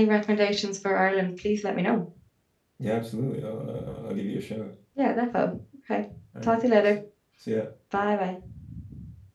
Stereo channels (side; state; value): both; identical; correlation 1.00